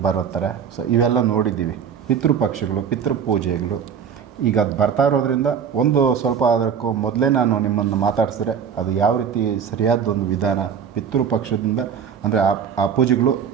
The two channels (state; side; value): quieter; left; 7.4 dB